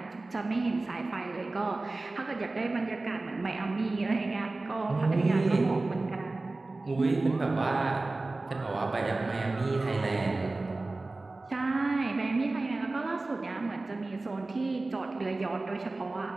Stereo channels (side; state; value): left; quieter; 3.2 dB